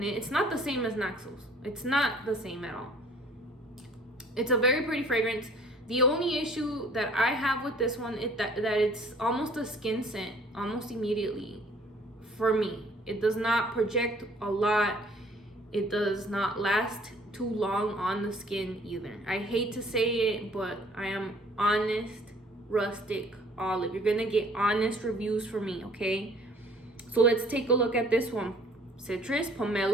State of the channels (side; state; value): both; normal; correlation 0.55